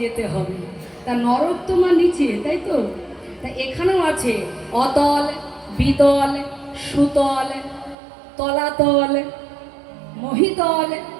যেতে হবে। তা নরক তো মা নিচে, তাই তো? তা এখানেও আছে অতল, বিতল, সুতল, তলাতল, মহিতল,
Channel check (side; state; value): left; drops out; at 8.0 s